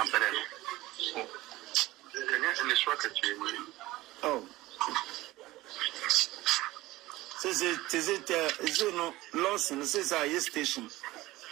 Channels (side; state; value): left; quieter; 18.0 dB